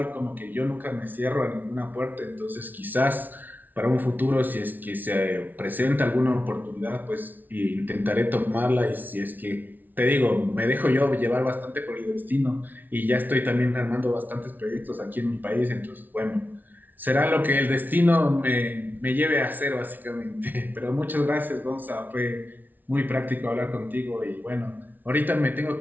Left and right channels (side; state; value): left; late; 0.083 ms